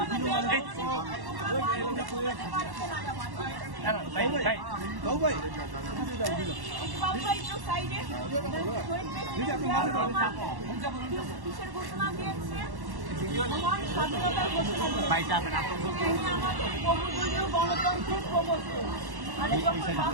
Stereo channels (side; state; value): left; late; 1.1 ms